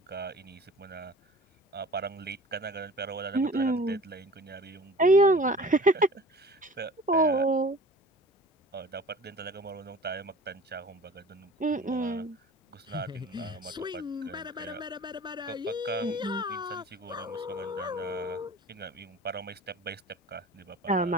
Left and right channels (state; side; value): normal; both; correlation 0.43